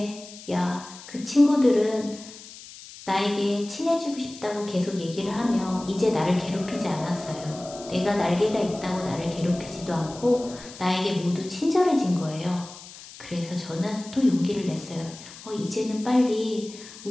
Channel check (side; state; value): left; noise; hiss, 17 dB below the sound